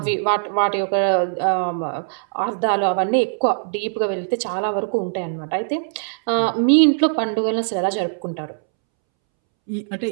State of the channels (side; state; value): left; silent; 65 dB below the other